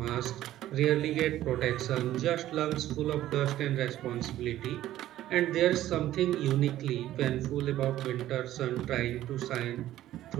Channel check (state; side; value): quieter; left; 13.7 dB